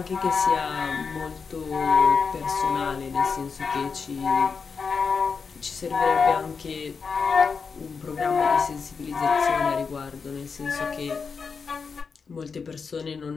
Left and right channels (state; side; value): quieter; right; 5.4 dB